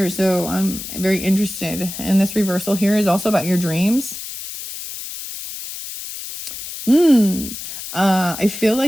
So I'm very interested. And this reversal here is also about your dreams. I feel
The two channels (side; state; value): left; noise; hiss, 9 dB below the sound